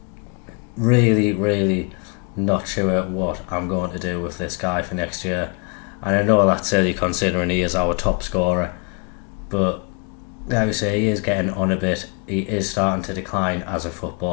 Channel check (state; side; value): quieter; right; 34.1 dB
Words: Really not sure what I'm going to do with this guy for next year, and I know that's silly considering he is our top scorer, but like I say, he is getting on a bit. He is starting to decline as a